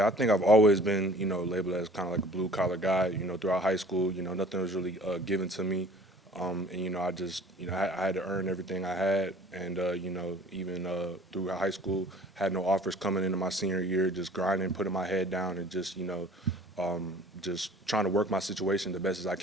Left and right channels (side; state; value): both; normal; correlation 0.49